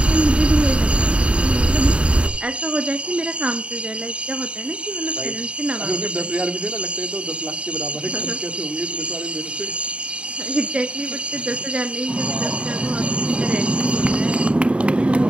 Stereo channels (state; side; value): late; left; 0.059 ms